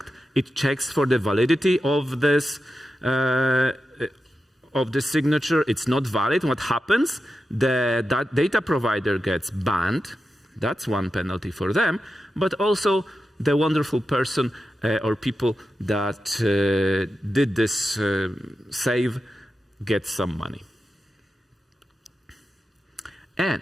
It checks for the validity of this signature. It's not valid. What happens? That data provider gets banned. That's one penalty for them. But also the wonderful person or people that did this save get some money.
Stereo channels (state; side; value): normal; both; correlation 0.90